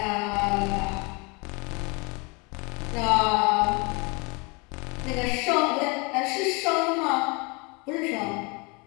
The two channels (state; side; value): quieter; right; 29.3 dB